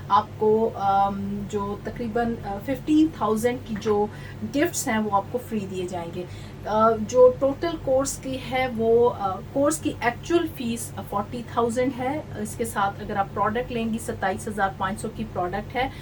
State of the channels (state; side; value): identical; both; correlation 1.00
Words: आपको जो तकरीबन 15,000 की जो गिफ्ट्स हैं वो आपको फ्री दिए जाएंगे। जो टोटल कोर्स की है वो कोर्स की एक्चुअल फीस 40,000 है। इसके साथ अगर आप प्रोडक्ट लेंगी 27,500 की प्रोडक्ट है,